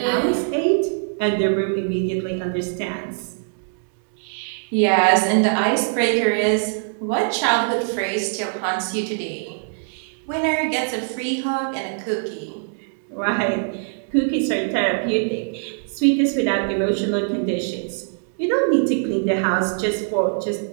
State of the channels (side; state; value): left; silent; 64 dB below the other